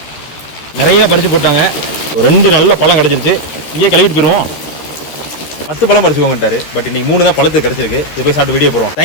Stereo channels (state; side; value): late; right; 13 ms